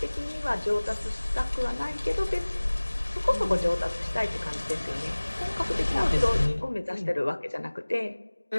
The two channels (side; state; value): both; inverted; correlation -1.00